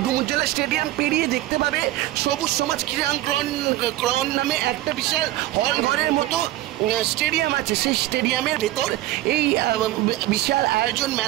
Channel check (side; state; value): left; quieter; 15.9 dB